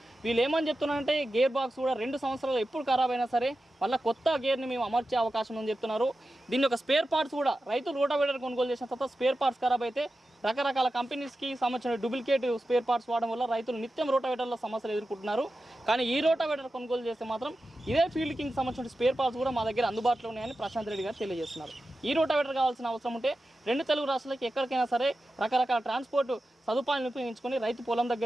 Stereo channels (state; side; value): normal; both; correlation 0.92